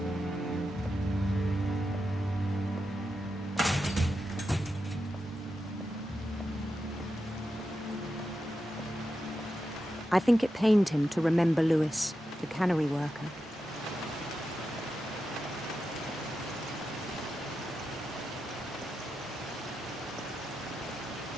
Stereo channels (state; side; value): normal; both; correlation 0.89